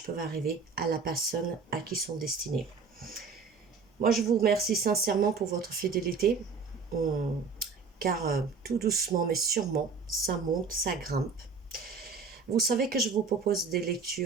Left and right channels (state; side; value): quieter; left; 5.0 dB